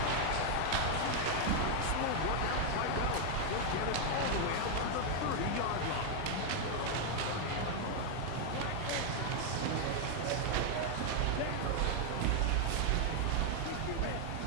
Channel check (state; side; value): different; both; correlation 0.00